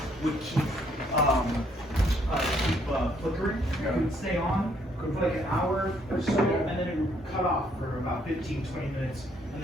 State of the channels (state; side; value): normal; both; correlation 0.68